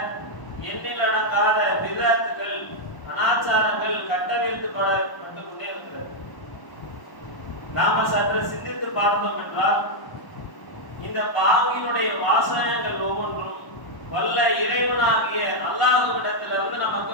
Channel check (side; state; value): right; late; 1.0 ms